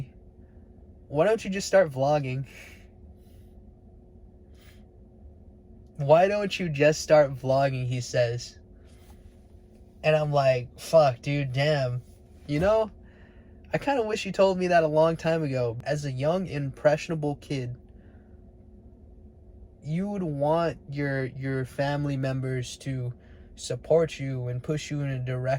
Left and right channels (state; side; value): identical; both; correlation 1.00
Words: why don't you just start vlogging? Why don't you just start vlogging, he says. And I'm like, fuck, dude, damn. You know, I kind of wish you told me that a long time ago. As a young, impressionable kid, you would want your family members to support you and push you in a